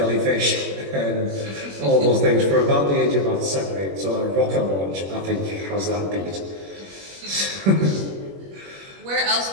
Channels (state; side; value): late; left; 21 ms